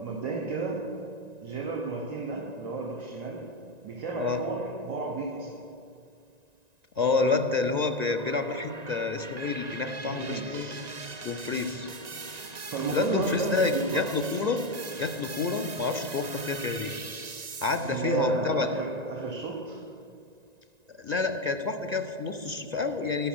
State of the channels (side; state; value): left; late; 1.9 ms